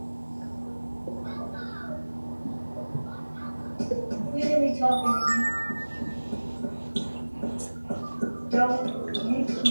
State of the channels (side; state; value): both; inverted; correlation -1.00